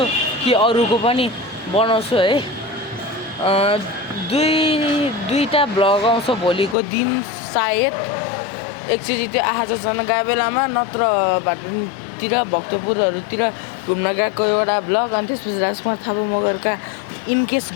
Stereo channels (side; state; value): right; drops out; at 6.8 s